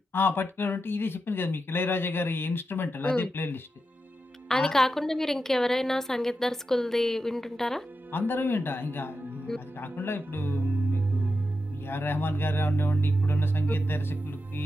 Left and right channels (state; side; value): normal; both; correlation 0.88